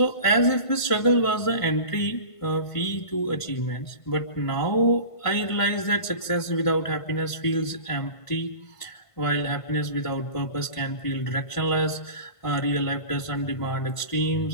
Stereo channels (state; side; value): late; right; 1.5 ms